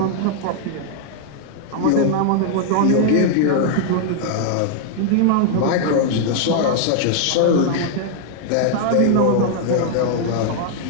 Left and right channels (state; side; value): different; both; correlation 0.00